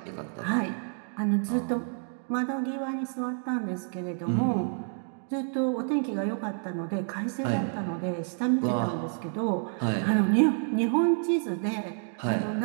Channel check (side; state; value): left; silent; 57 dB below the other